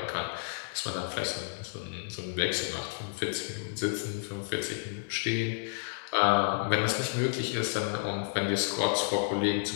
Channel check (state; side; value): silent; right; 57 dB below the other